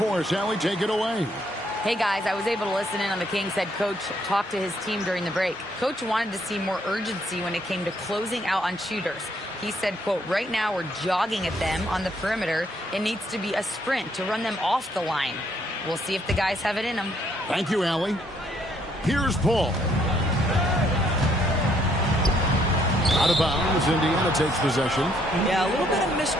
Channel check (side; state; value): both; normal; correlation 0.69